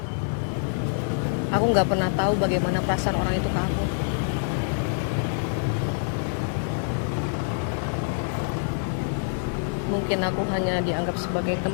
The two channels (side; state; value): right; silent; digital silence